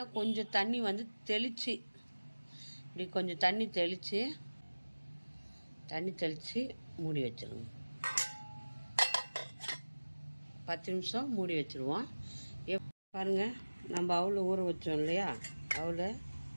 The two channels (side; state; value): both; inverted; correlation -1.00